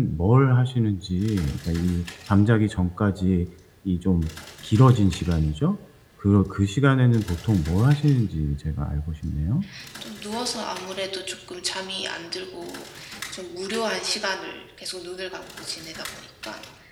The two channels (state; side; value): identical; both; correlation 1.00